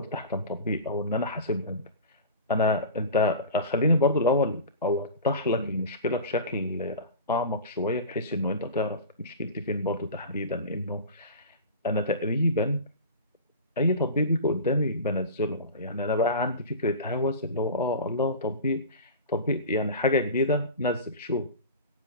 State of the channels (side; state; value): both; inverted; correlation -0.32